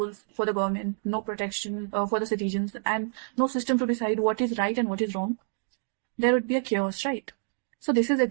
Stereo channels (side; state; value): left; silent; digital silence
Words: for the government, no protection for the citizens, and no system to decide what is right and what is wrong? There would be a chaos, right? So this is